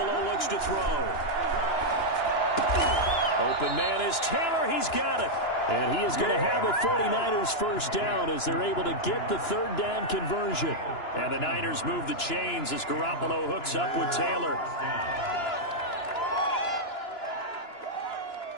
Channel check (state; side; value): late; right; 2.9 ms